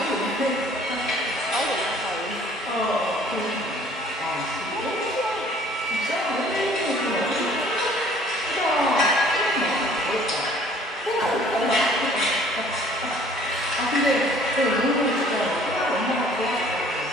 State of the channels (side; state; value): both; normal; correlation 0.55